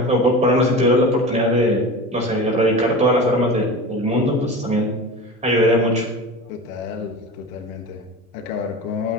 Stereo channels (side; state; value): both; normal; correlation 0.32